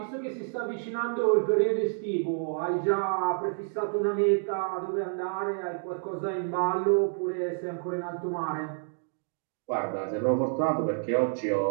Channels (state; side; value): silent; left; 59 dB below the other